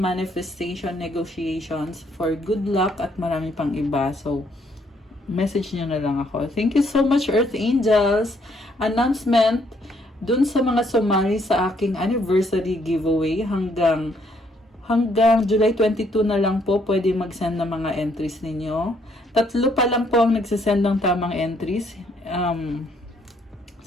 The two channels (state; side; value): normal; both; correlation 0.69